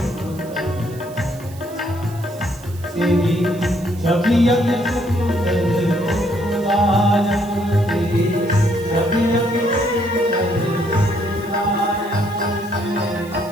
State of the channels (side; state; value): right; noise; hiss, 21 dB below the sound